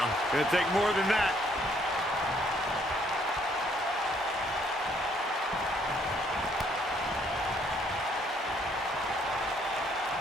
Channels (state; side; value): normal; both; correlation 0.66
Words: Going to take more than that.